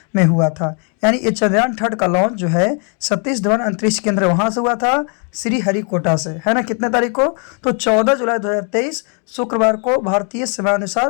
में हुआ था। यानी ये चंद्रयान थर्ड का लॉन्च जो है सतीश धवन अंतरिक्ष केंद्र वहाँ से हुआ था, श्रीहरिकोटा से, है ना। कितने तारीख को? तो 14 जुलाई 2023 शुक्रवार को भारतीय समय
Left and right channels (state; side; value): quieter; right; 39.5 dB